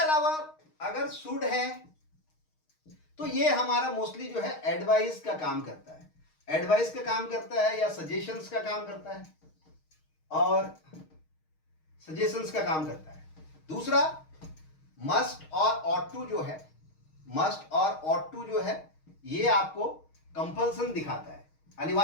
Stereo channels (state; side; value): late; right; 6.4 ms